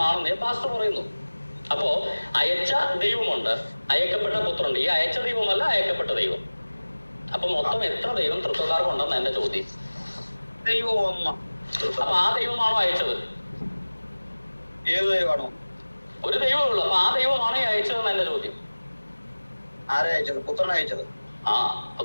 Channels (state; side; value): inverted; both; correlation -1.00